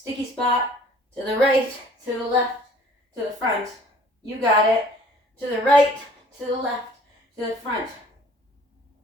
spot to the right, to the left, to the front. You got it. To the right, to the left, to the front.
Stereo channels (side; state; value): both; normal; correlation 0.53